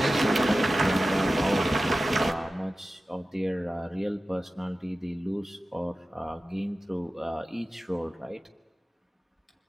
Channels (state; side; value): normal; both; correlation 0.95